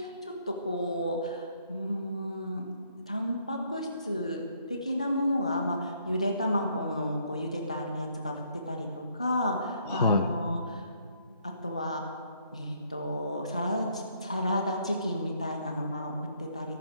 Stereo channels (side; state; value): both; inverted; correlation -0.68